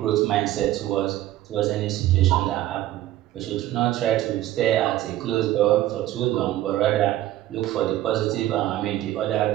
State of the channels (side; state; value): left; quieter; 14.4 dB